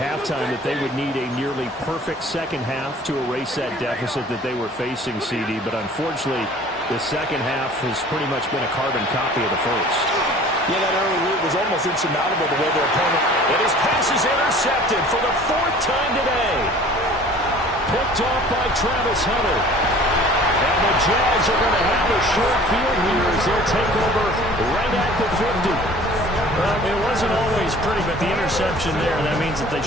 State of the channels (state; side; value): normal; both; correlation 0.48